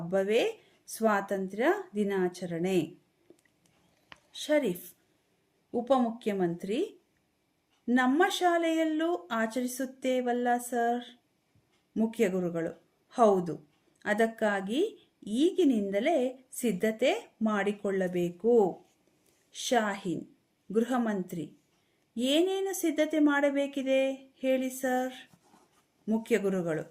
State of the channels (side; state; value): both; identical; correlation 1.00